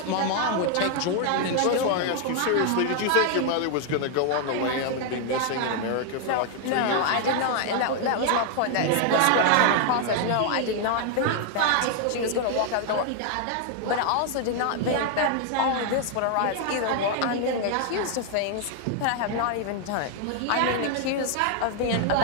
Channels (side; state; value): both; different; correlation 0.00